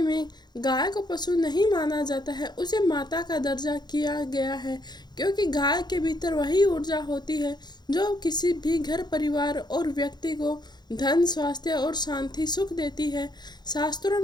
में गाय को पशु नहीं माना जाता है, उसे माता का दर्जा किया गया है। क्योंकि गाय के भीतर वही ऊर्जा होती है जो किसी भी घर, परिवार और व्यक्ति को धन, स्वास्थ्य और शांति, सुख देती है। शास्त्रों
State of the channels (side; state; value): right; late; 0.21 ms